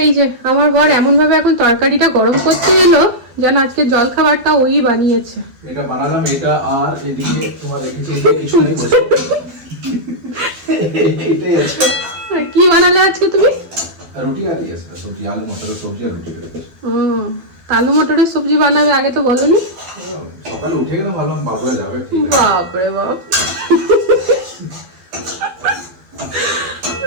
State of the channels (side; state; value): left; late; 12 ms